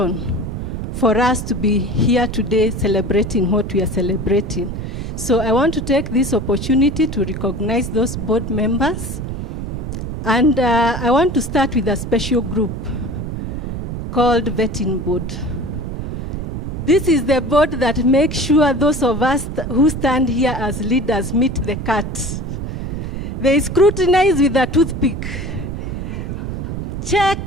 for us to be here today celebrating what we are celebrating. So I want to take this opportunity to recognize those board members. And I want to start with a special group called Vetting Board. This is the board that makes sure those of us who stand here as leaders meet the cut. They scrutinize with a toothpick.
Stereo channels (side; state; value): right; noise; rumble, 5 dB below the sound